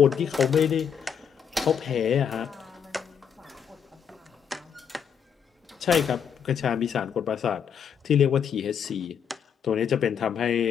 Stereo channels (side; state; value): right; quieter; 7.6 dB